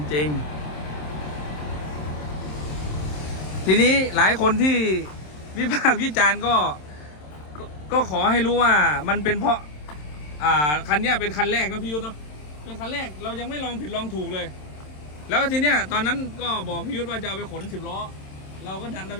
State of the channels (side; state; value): right; late; 27 ms